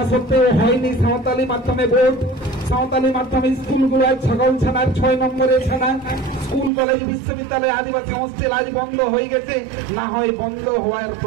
সত্ত্বেও হয়নি সাঁওতালি মাধ্যমে ভোট। সাঁওতালি মাধ্যমে স্কুলগুলো ছাগলছানার 6 নম্বরের ছানা। স্কুল কলেজ বিশ্ববিদ্যালয় আদিবাসী হোস্টেল আজ বন্ধ হয়ে গেছে, না হয় বন্ধ হওয়ার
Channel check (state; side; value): drops out; left; at 6.7 s